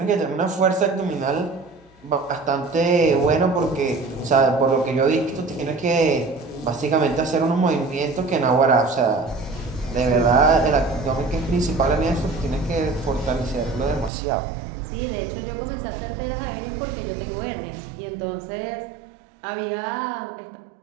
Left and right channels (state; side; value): drops out; left; at 14.1 s